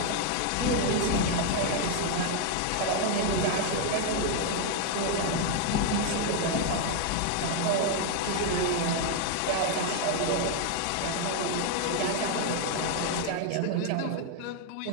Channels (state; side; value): different; both; correlation 0.00